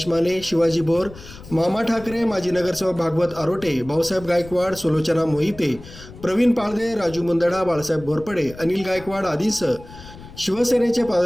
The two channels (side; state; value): left; noise; rumble, 17 dB below the sound